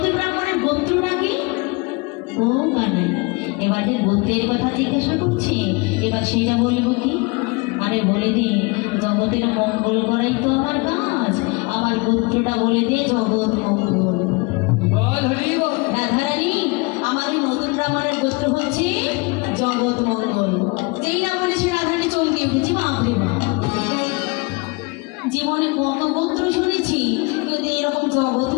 ব্রাহ্মণের গোত্রটা কি? ও কানাই, এবার যে গোত্রের কথা জিজ্ঞাসা করছি, এবার সেটা বলবো কি? আরে বলে দিই, জগতের মঙ্গল করাই তো আমার কাজ, আমার গোত্রটা বলে দিয়ে জগৎ মঙ্গল। রাধারানী, আমার ওই নতুন ব্রাহ্মণের গোত্র হচ্ছে জগৎ মঙ্গল। যেই না বলেছি রাধারানী চমকে উঠেছি, বাপরে বাপ। জীবনে কত গোত্র শুনেছি, কিন্তু এরকম জগৎ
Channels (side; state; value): right; quieter; 27.5 dB